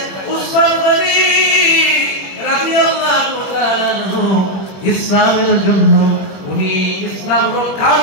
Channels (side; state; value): right; late; 20 ms